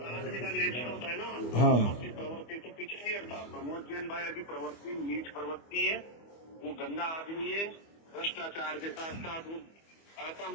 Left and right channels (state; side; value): late; right; 25 ms